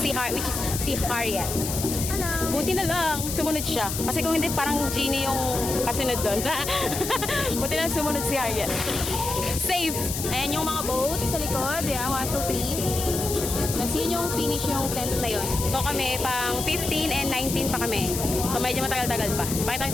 is si Harriet. Buti na lang, sumunod siya. Kasi kung hindi, parang Genie yung kasunod doon. Buti na lang sumunod si Harriet. Safe! Ayan yung mga boat sa likod. Yeah, 1, 2, 3. Tapos yun yung finish yung tent na yun. So kami, pang 15 and 19 pa kami. So medyo matagal-tagal pa. Pakita ko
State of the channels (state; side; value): noise; left; hiss, 5 dB below the sound